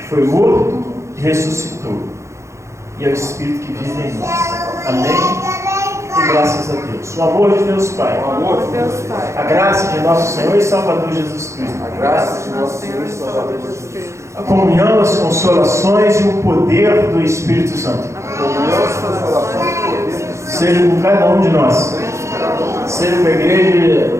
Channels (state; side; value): late; left; 0.14 ms